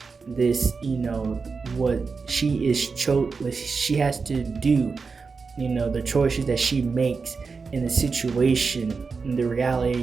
This what she has to do, the choices that she makes in the situation, in the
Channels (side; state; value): left; quieter; 4.8 dB